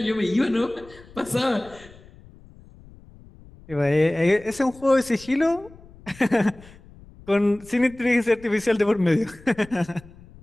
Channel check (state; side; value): noise; left; rumble, 22 dB below the sound